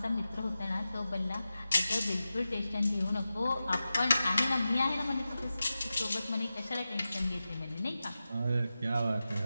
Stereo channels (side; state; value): both; inverted; correlation -0.93